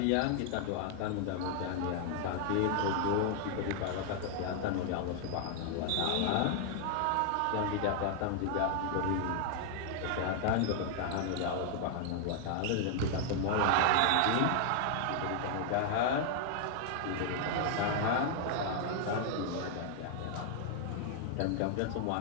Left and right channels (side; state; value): both; different; correlation 0.00